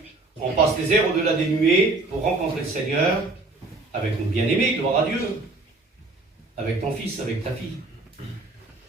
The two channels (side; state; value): left; quieter; 3.2 dB